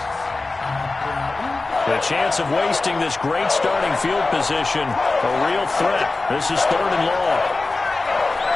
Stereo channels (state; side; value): quieter; right; 3.5 dB